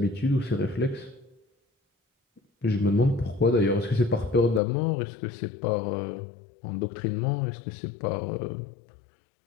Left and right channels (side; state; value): right; drops out; at 4.6 s